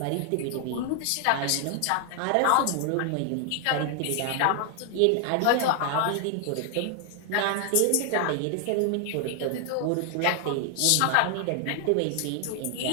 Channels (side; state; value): both; different; correlation 0.00